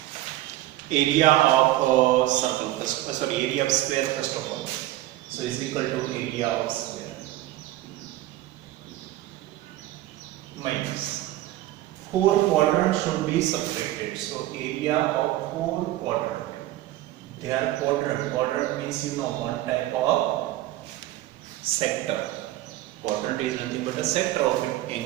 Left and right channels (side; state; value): left; quieter; 15.3 dB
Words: Area of circle first, area of square first of all. So is equal to area of square minus 4 quadrants should be subtracted. So area of 4 quadrant. They are quadrant. Quadrant means one type of sector. Quadrant is nothing but a sector of an